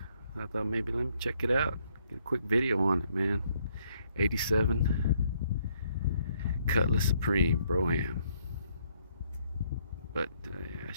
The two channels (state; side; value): inverted; both; correlation -0.70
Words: I thought maybe let me check it out. Get a quick video on it, man. 87 Cutlass Supreme, Brougham. But yeah,